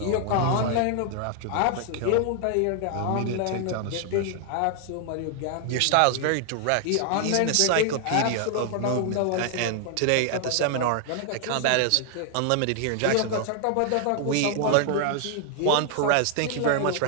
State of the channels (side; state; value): both; different; correlation 0.00